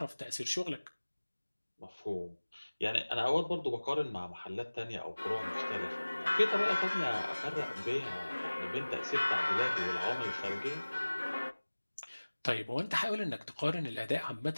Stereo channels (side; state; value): both; inverted; correlation -1.00